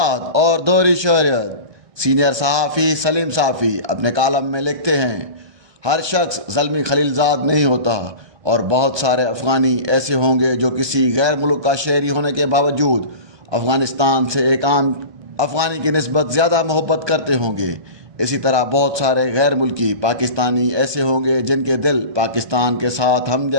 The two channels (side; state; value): left; late; 1.2 ms